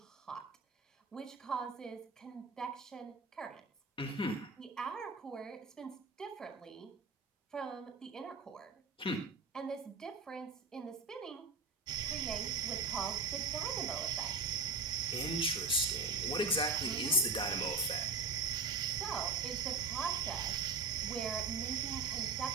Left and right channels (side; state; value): left; quieter; 4.1 dB